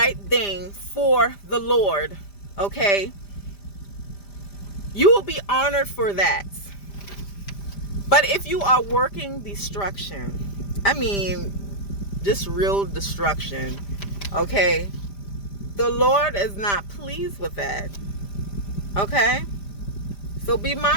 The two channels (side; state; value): right; late; 5.0 ms